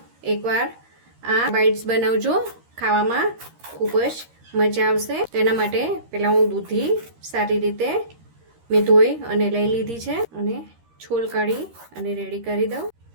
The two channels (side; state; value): left; late; 13 ms